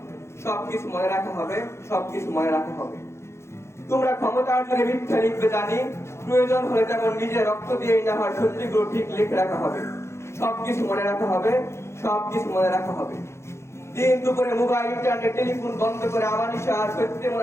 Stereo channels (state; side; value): late; right; 0.13 ms